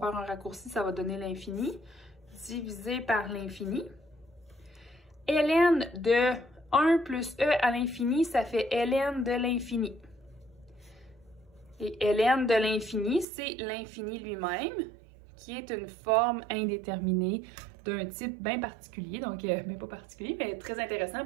un raccourci, ça va donner l'infini, divisé par l'infini. Ln de 1 plus e à l'infini, ça fait ln de l'infini. Et ln de l'infini, c'est l'infini lui-même, qui est une forme indéterminée d'un type bien particulier, donc mais pas particulier, mais très intéressant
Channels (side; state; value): left; drops out; at 13.2 s